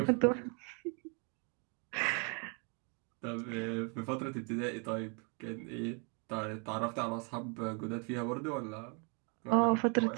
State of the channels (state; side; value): quieter; left; 35.9 dB